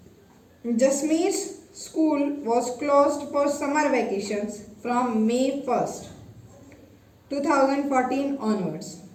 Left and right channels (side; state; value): both; identical; correlation 1.00